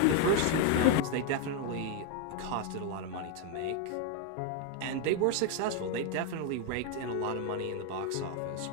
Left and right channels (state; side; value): different; both; correlation 0.01